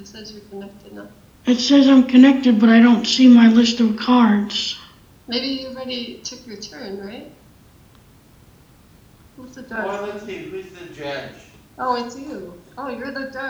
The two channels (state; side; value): identical; both; correlation 1.00